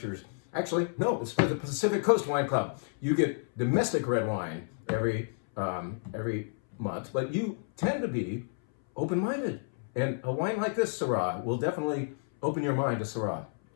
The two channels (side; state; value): right; silent; 58 dB below the other